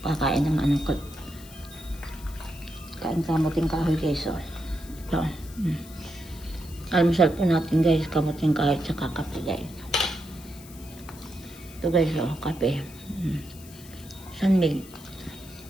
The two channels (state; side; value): noise; left; hiss, 19 dB below the sound